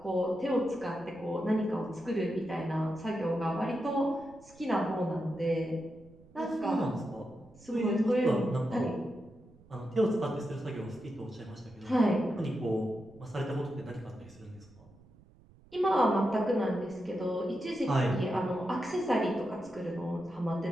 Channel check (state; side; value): noise; right; rumble, 25 dB below the sound